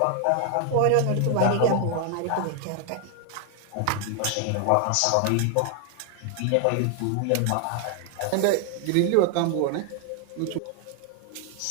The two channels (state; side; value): different; both; correlation 0.00